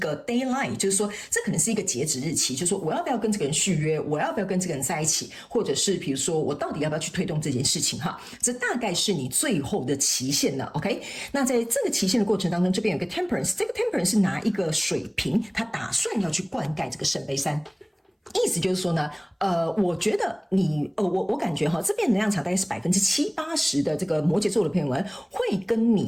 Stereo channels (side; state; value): both; identical; correlation 1.00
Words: deadline， 就是说这可能是一个截止日期，就是说我要不要跟这个人续约，我要不要跟这个人在一起，或者是比如说我到底要不要去推动这件事情这大概是你最后的期限了 OK。 那在这个期限的过程当中，这边有个 Temperance， 这个 Temperance 是拿一个水瓶，他打算要去灌溉这个圣杯3，意思就是说呢，我觉得我感觉这边能量场大概是70-80%的这个摩羯座的朋友们会跟